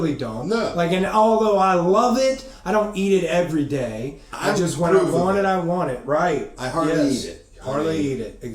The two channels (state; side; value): identical; both; correlation 1.00